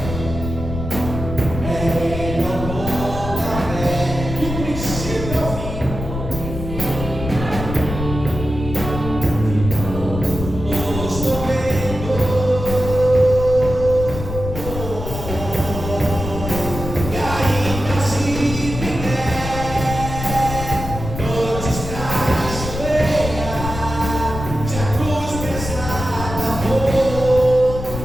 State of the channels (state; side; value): noise; left; rumble, 7 dB below the sound